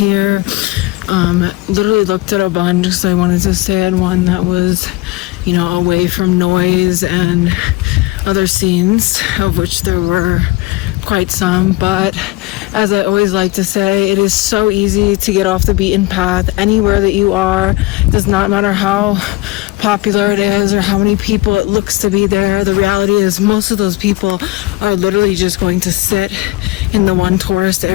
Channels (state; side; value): quieter; right; 20.4 dB